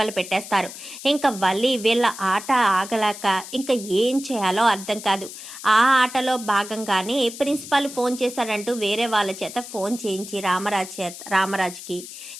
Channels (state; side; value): noise; left; hiss, 12 dB below the sound